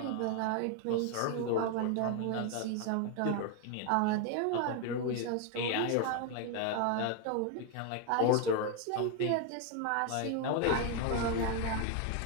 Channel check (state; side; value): different; both; correlation 0.01